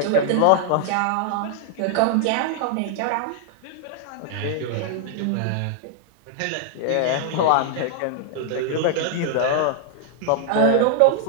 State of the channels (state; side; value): different; both; correlation 0.00